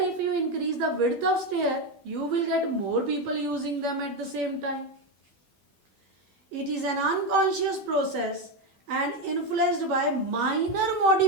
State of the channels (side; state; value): left; late; 10 ms